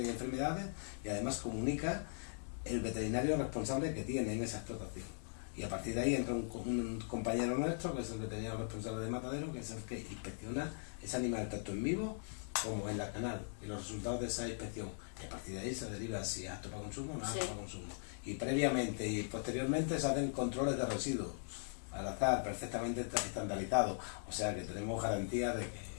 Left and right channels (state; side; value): silent; right; digital silence